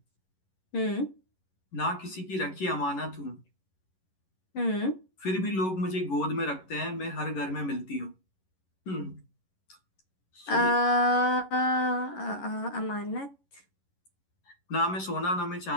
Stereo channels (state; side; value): late; right; 11 ms